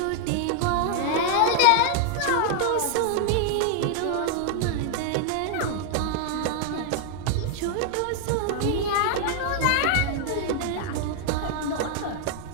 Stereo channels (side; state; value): both; different; correlation 0.00